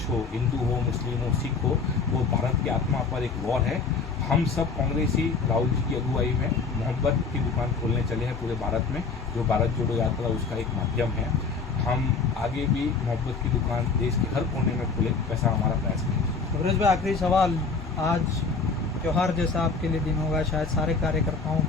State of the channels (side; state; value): right; quieter; 4.7 dB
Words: हो, हिंदू हो, मुस्लिम हो, सिख हो, वो भारत की आत्मा पर एक वॉर है। हम सब कांग्रेसी राहुल जी की अगुवाई में मोहब्बत की दुकान खोलने चले हैं पूरे भारत में, जो भारत जोड़ो यात्रा उसका एक माध्यम है। हम आगे भी मोहब्बत की दुकान देश के हर कोने में खोले, वैसा हमारा प्रयास है। तबरेज़ भाई, आखिरी सवाल, आज त्यौहार जैसा आपके लिए दिन होगा, शायद सारे कार्यकर्ताओं